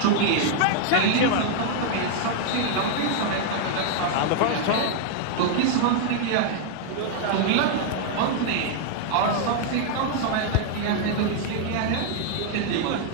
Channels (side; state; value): both; different; correlation 0.00